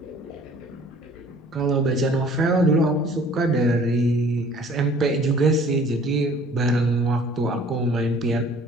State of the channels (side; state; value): both; normal; correlation 0.52